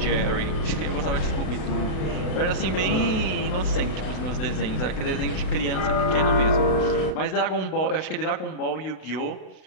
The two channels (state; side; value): late; right; 33 ms